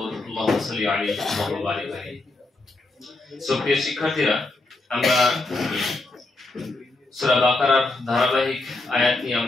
আল্লাহুম্মা সাল্লি আলাইহি ওয়া বারিক আলাইহি। সুপ্রিয় শিক্ষার্থীরা, আমরা সূরা বাকারার ধারাবাহিক আয়াত নিয়ে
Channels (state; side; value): quieter; right; 3.1 dB